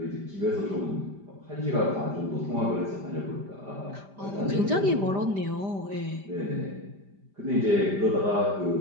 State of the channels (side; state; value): left; late; 5.0 ms